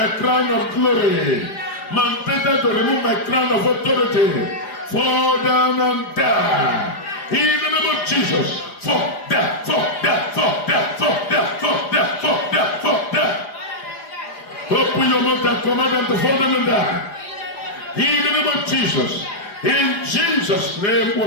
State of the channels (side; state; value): right; late; 4.9 ms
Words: crown of glory, mandated to remove my crown of authority, fall down and die. In the name of Jesus, fall down, fall down, fall down, fall down, fall down, fall down, fall down. Open your mouth and command them to fall down and die. In the name of Jesus, in Jesus' name